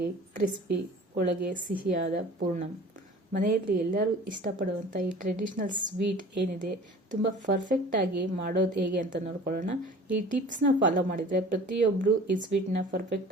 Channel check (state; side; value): normal; both; correlation 0.44